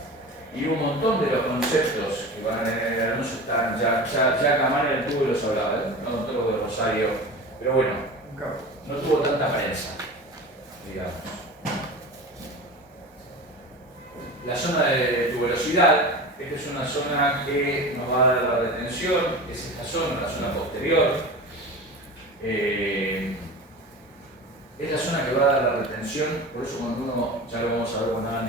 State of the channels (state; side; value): normal; both; correlation 0.32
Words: y un montón de los conceptos que van en el anuncio están, ya Camaño Altuve los hablaba, no todos los de Rosario, pero bueno, no tuvo tanta prensa, digamos. La zona de tuberosidad, esta es una zona que nos va a dar la retención, es esta zona, la zona posterior. Es la zona que va a dar la retención, por eso cuando uno, ya lo vamos a ver cuando hagan